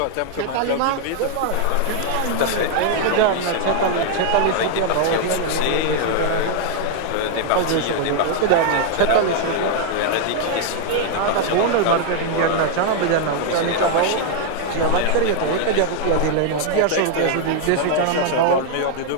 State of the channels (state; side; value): different; both; correlation 0.00